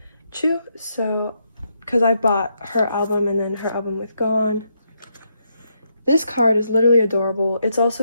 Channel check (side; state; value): both; inverted; correlation -0.78